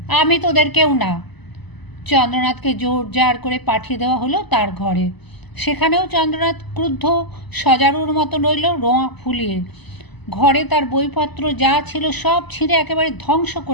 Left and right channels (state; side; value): late; right; 0.99 ms